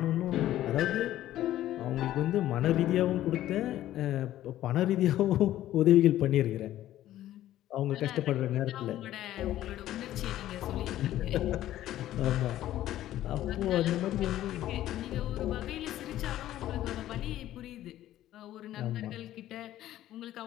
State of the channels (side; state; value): right; quieter; 13.4 dB